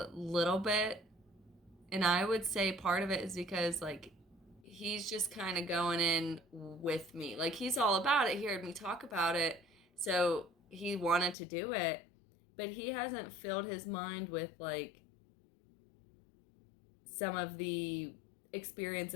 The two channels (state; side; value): drops out; right; at 11.4 s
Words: little bit, and I would say part of it is because like he's just kind of going in with me. Like he's all about it. He heard me talk about it, so he wanted to do it, but he hasn't filled his mind with like some of the